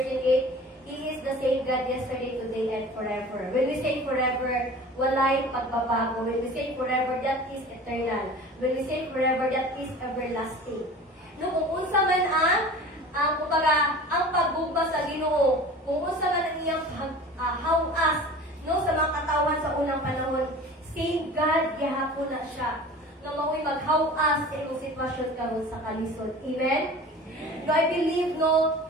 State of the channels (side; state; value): both; normal; correlation 0.40